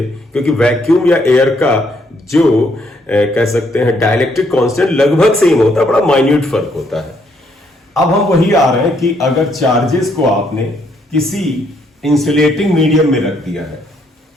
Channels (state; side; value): normal; both; correlation 0.71